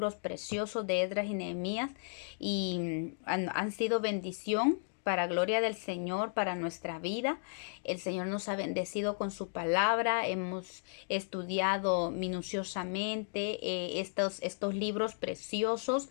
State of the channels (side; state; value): right; silent; digital silence